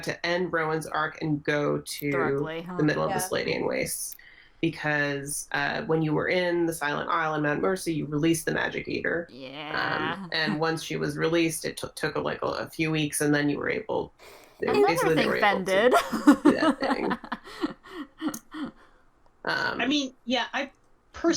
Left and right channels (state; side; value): identical; both; correlation 1.00